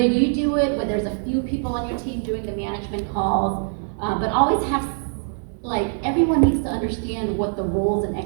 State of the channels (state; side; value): silent; left; digital silence